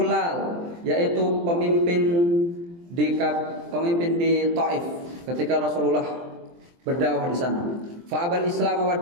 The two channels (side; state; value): left; late; 23 ms